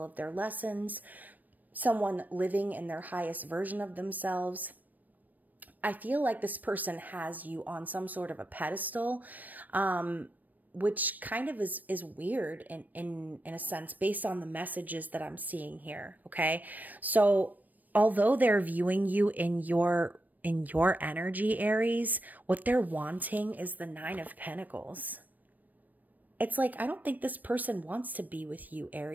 of their lessons, someone living in their highest version of themselves. I feel like this person has you on some sort of a pedestal, which kind of is weird in a sense based on the messages that I'm seeing here, okay? So although they're viewing you in your energy, Aries, what they're wanting is the Nine of Pentacles. It's like, I don't think this person wants to be with you,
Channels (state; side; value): late; left; 0.085 ms